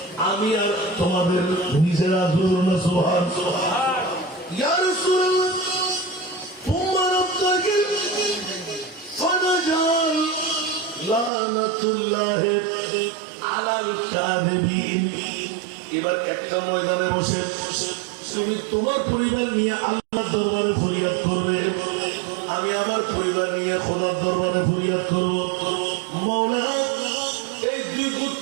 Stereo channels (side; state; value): left; drops out; at 11.3 s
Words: আমি আর তোমাদের নিজেরা দুরুন সুবহানাল্লাহ ইয়া রাসূলুল্লাহ তুম্মা রাব্বাকে ফানাজাল লানাতুল্লাহ আলাল কাযিবিন এবার একটা ময়দানে বসে তুমি তোমার পরিবার নিয়ে আল্লাহর দরবারে ফরিয়াদ করবে আমি আমার পরিবার নিয়ে খোদার দরবারে ফরিয়াদ করব মাওলা এই দুই